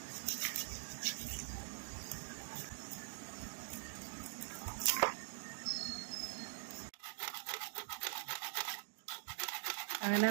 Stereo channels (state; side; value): silent; left; digital silence